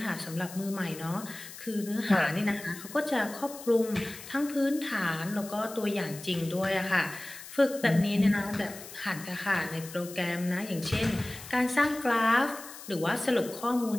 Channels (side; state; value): left; noise; hiss, 14 dB below the sound